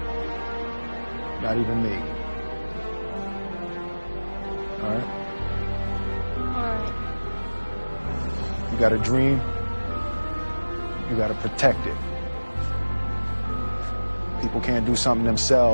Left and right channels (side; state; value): both; inverted; correlation -1.00